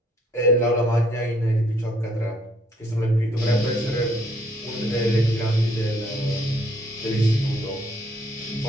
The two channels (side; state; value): both; normal; correlation 0.66